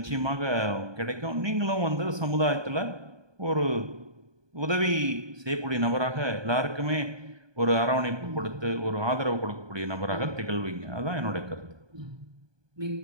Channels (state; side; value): late; left; 1.2 ms